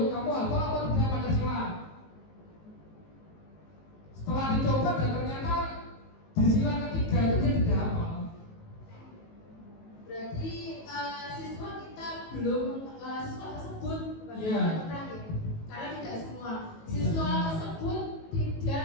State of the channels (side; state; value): right; late; 19 ms